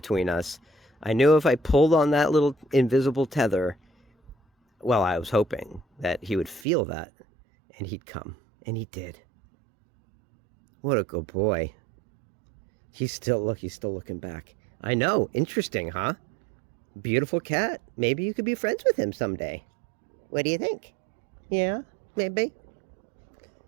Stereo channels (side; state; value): left; drops out; at 6.7 s